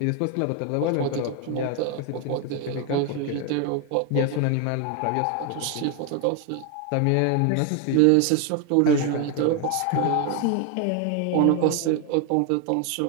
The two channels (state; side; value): different; both; correlation 0.01